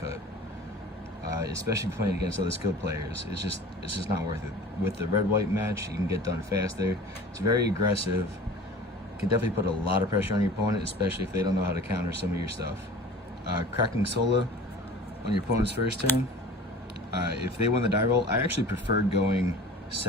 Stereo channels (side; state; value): both; normal; correlation 0.41